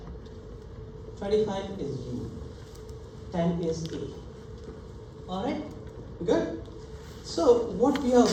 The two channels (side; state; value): both; identical; correlation 1.00